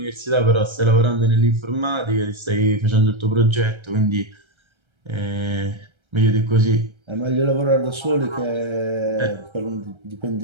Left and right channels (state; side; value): late; left; 1.3 ms